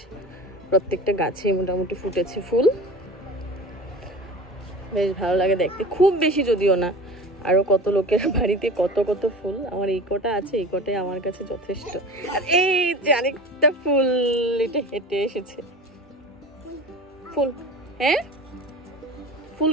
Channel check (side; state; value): both; normal; correlation 0.35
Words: প্রত্যেকটা গাছে মোটামুটি ফুটেছে ফুল, বেশ ভালো লাগে দেখতে। খুব বেশি যদিও না, আরো কত লোকের বাড়িতে কত কত ফুল। আমার এই কটা আছে, এই কটাই আমার কাছে যথেষ্ট। আর এই যে আরেকটা ফুল, এটা হেঁটে এসেছে ফুল। হ্যাঁ ফুল